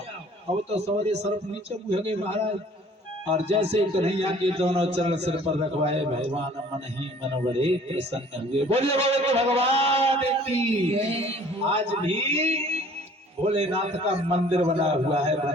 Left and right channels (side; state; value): both; normal; correlation 0.53